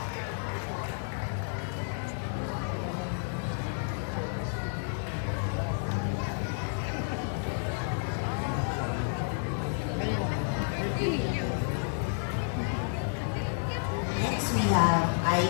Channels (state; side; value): silent; right; digital silence